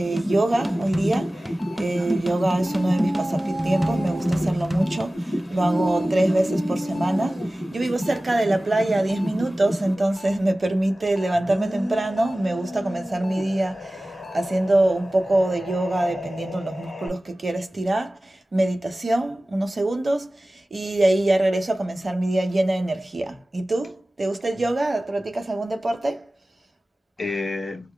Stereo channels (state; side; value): normal; both; correlation 0.97